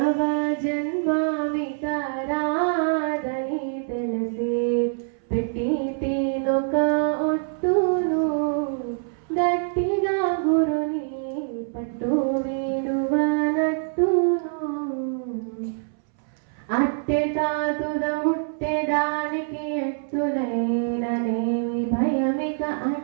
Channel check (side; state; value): left; silent; 62 dB below the other